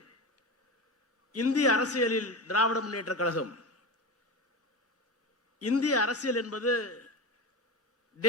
இந்திய அரசியலில் திராவிட முன்னேற்ற கழகம், இந்திய அரசியல் என்பது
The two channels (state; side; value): normal; both; correlation 0.24